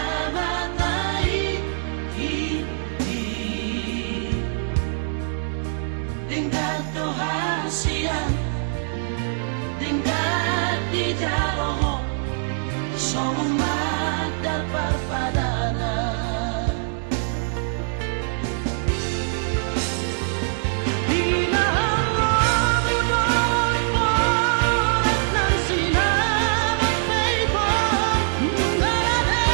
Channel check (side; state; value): left; silent; digital silence